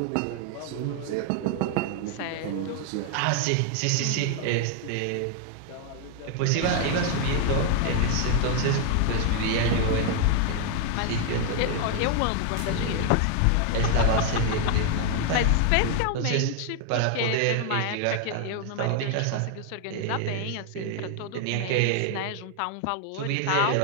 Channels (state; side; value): different; both; correlation 0.00